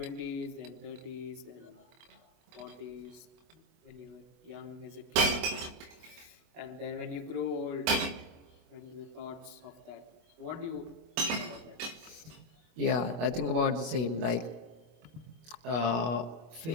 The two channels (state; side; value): late; left; 25 ms